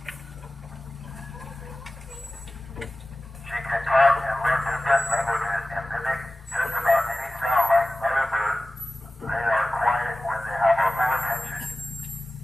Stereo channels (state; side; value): normal; both; correlation 0.96